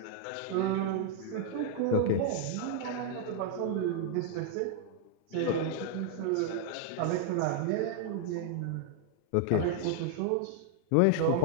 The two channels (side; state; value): both; different; correlation 0.00